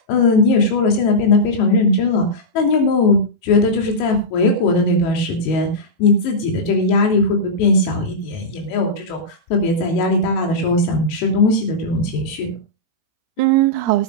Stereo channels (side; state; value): right; late; 19 ms